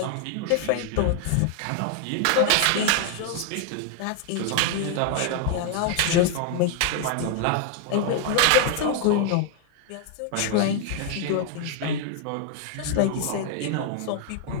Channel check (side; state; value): both; different; correlation 0.00